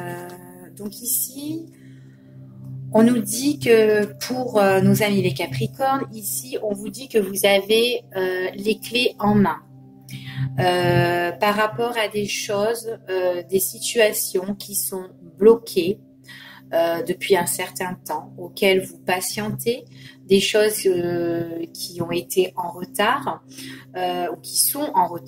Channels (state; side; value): identical; both; correlation 1.00